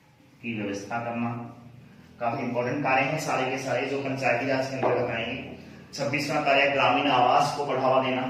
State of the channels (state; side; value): identical; both; correlation 1.00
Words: की व्यवस्था करना। काफी इंपॉर्टेंट कार्य हैं सारे के सारे जो पंचायती राज के अंतर्गत आएंगे। 26वां कार्य ग्रामीण आवास को बढ़ावा देना,